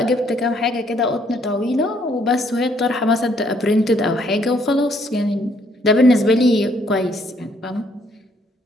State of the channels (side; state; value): both; normal; correlation 0.67